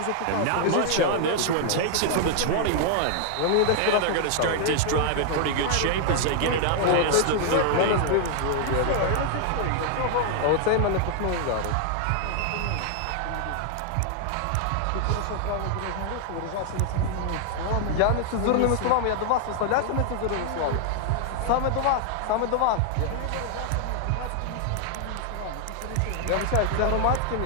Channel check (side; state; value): both; different; correlation 0.00